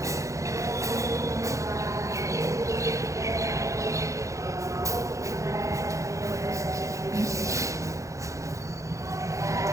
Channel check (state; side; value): late; left; 0.15 ms